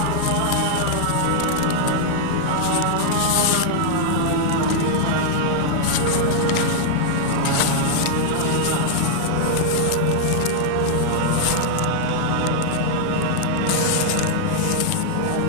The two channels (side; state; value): both; different; correlation -0.01